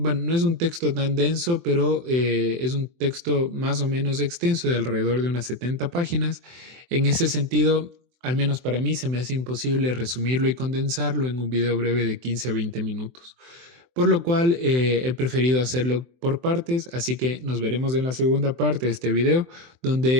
no es un texto tan denso, pero es un texto más o menos extenso de alrededor de unas 70 páginas. En ese sentido, al menos para mí, se me hace imposible resumirlo y condensarlo en un video breve de 15 a 20 minutos. Por lo cual he preferido hacerlo por partes, así que nos veremos en la segunda parte de este video,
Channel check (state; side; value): late; left; 23 ms